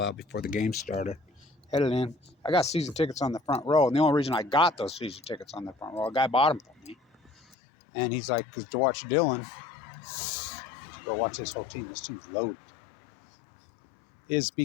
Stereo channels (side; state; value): right; drops out; at 7.6 s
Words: out before the game started. Headed in. I got season tickets on the front row, and the only reason I got those season tickets on the front row, a guy bought them for me. And he's like, to watch Dylan, to go watch this whole team. This team's loaded. Is